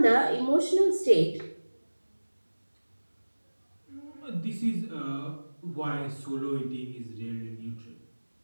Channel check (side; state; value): both; inverted; correlation -1.00